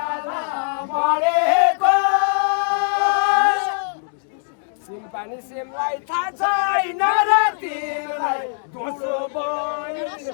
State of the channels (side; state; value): right; silent; digital silence